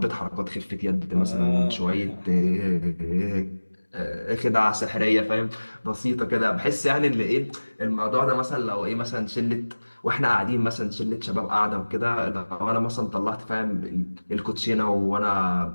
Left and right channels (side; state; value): both; inverted; correlation -1.00